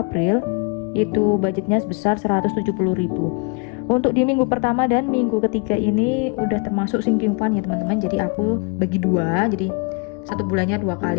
itu budgetnya sebesar 170.000. Untuk di minggu pertama dan minggu ketiga ini udah termasuk sinking fund ya teman-teman. Jadi aku bagi dua, jadi satu bulannya 2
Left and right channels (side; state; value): right; quieter; 32.6 dB